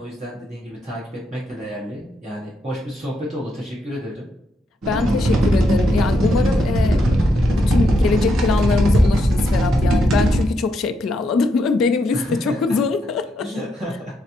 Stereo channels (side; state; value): both; normal; correlation 0.79